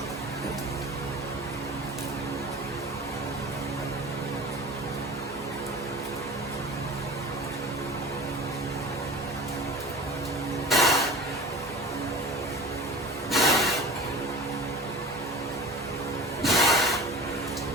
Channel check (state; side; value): normal; both; correlation 0.38